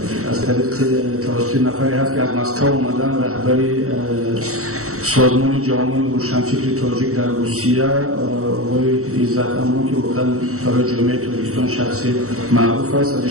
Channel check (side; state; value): left; late; 0.64 ms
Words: از طریق توسط نفری هست که از مسکو اومدن رهبری سازمان جامعه روشنفکر تاجیک در روسیه آقای عزت امان که واقعا برای جامعه تاجیکستان شخصی معروف است. از